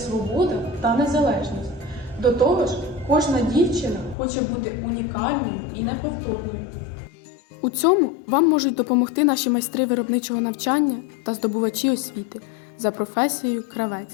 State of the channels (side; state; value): right; drops out; at 4.2 s